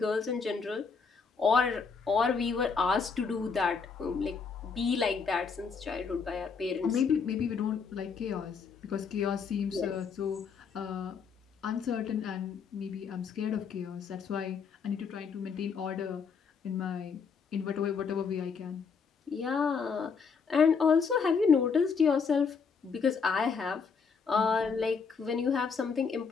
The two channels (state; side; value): quieter; right; 5.6 dB